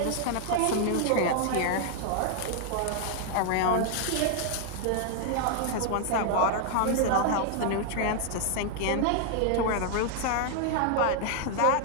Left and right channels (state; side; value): different; both; correlation 0.00